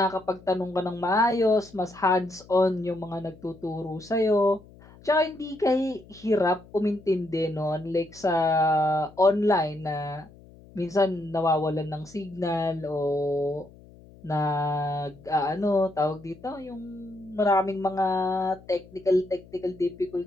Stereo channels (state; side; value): noise; left; hum, 23 dB below the sound